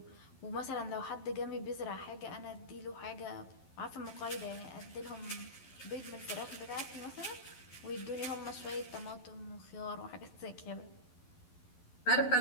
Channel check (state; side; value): late; right; 11 ms